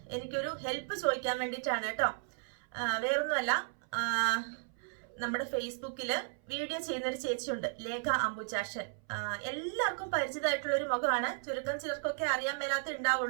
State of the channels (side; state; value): left; silent; 55 dB below the other